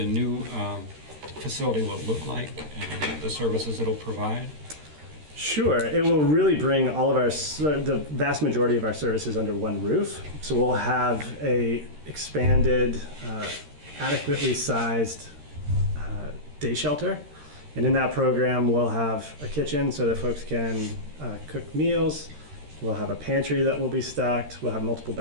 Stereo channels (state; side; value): late; left; 13 ms